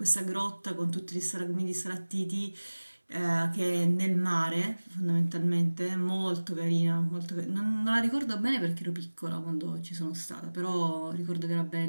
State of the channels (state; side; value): inverted; both; correlation -1.00